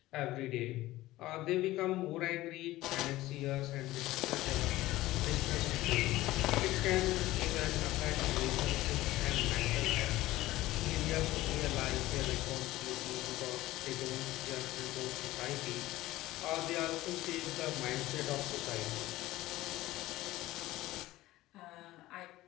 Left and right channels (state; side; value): quieter; right; 17.0 dB